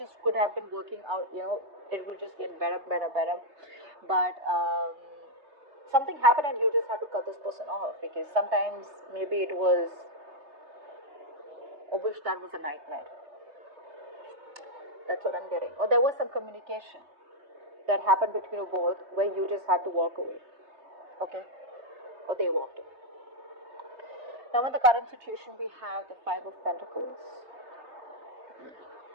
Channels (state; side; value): late; left; 3.3 ms